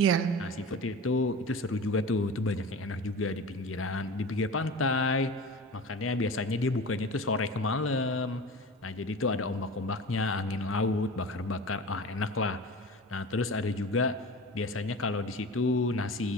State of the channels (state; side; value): normal; both; correlation 0.33